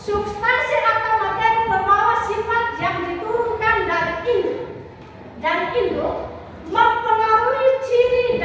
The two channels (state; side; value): identical; both; correlation 1.00